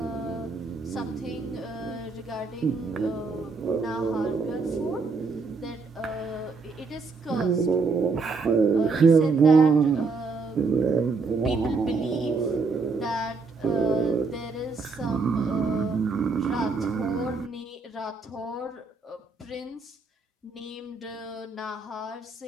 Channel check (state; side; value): quieter; left; 4.3 dB